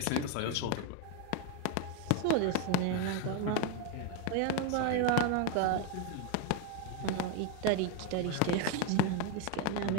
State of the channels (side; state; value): both; different; correlation 0.02